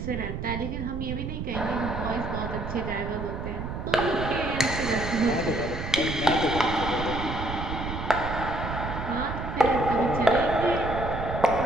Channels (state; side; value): noise; right; rumble, 5 dB below the sound